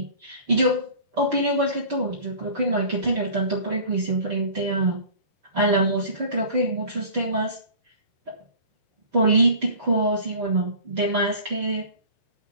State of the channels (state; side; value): inverted; both; correlation -0.43